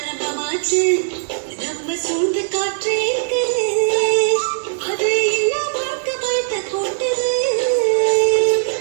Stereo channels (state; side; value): silent; left; 59 dB below the other